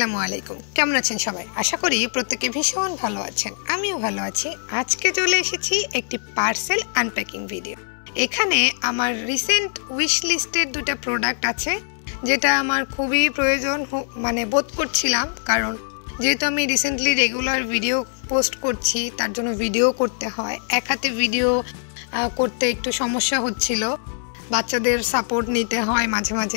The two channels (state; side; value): silent; right; 64 dB below the other